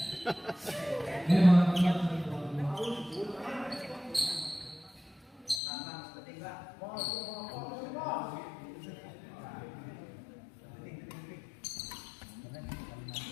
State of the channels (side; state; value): right; drops out; at 5.6 s